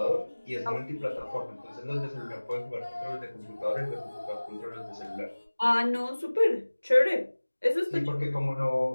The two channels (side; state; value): both; inverted; correlation -1.00